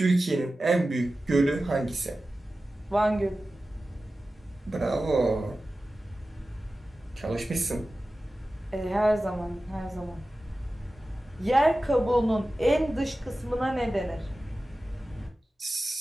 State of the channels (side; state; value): both; normal; correlation 0.95